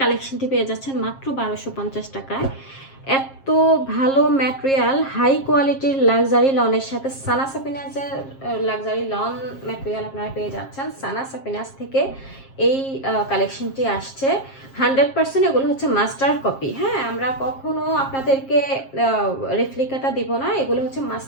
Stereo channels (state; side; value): late; right; 7.5 ms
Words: কালেকশনটি পেয়ে যাচ্ছেন মাত্র 1250 টাকায়। এত ভালো ম্যাটেরিয়াল, হাই কোয়ালিটির লাক্সারি লনের সাথে সানা সাফিনাসের লাক্সারি লন ম্যাটেরিয়াল আপনারা পেয়ে যাচ্ছেন। সানা সাফিনাস থেকে এই কালেকশনটি আসছে 100%। এগুলো হচ্ছে মাস্টার কপি। হ্যাঁ, আমরা কখনো আপনাদেরকে রেপ্লিকাটা দিব না, এগুলো হচ্ছে